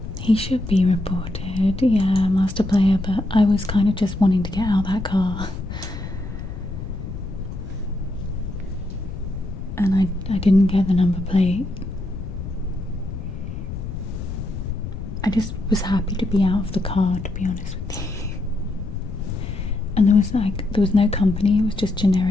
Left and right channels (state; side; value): noise; left; rumble, 8 dB below the sound